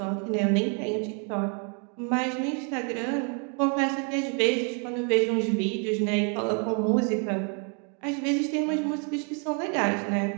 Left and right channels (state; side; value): quieter; left; 39.1 dB